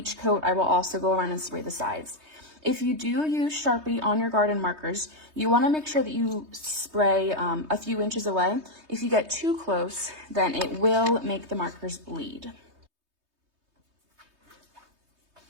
coat, I will also go around and spray the sides. If you do use Sharpie on your garden markers, you want to make sure that you spray a few inches away. If you get too close, then it will make the markers bleed.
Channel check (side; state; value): left; late; 3.2 ms